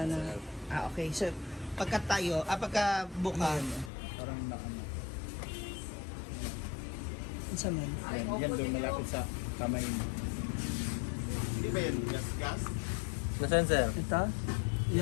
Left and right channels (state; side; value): drops out; right; at 3.9 s